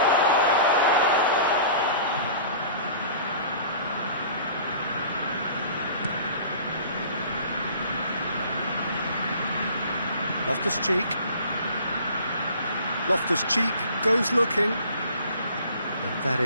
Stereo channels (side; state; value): both; inverted; correlation -0.46